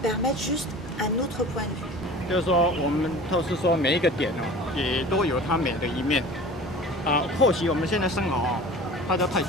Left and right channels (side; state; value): both; normal; correlation 0.40